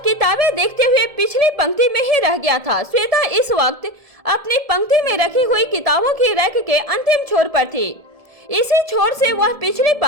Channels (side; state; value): left; late; 1.7 ms